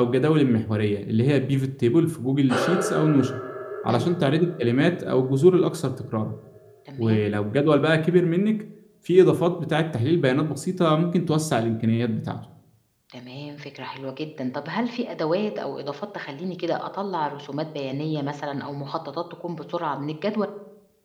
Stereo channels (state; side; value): identical; both; correlation 1.00